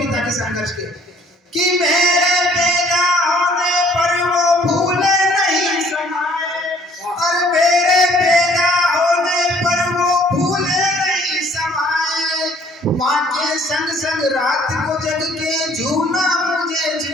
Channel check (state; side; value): normal; both; correlation 0.58